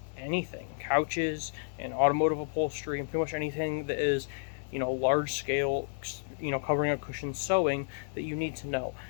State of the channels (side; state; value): right; silent; digital silence